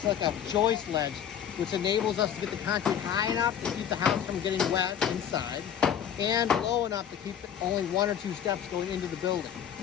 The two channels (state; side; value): quieter; right; 9.0 dB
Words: like a joist ledge, which enables us to get the concrete high enough to keep the house from getting wet inside and low enough to keep only one or two steps going into the building.